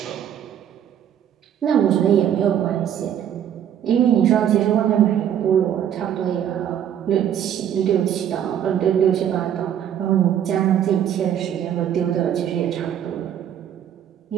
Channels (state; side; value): quieter; left; 9.8 dB